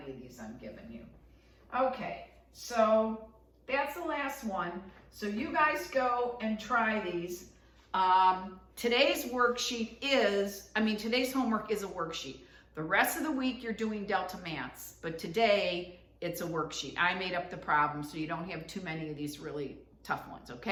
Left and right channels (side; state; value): both; identical; correlation 1.00